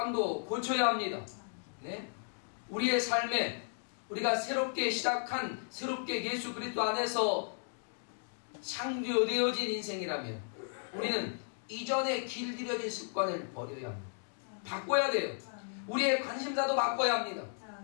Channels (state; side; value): silent; right; digital silence